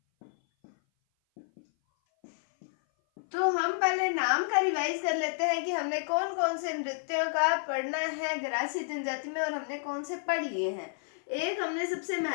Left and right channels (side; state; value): right; silent; 56 dB below the other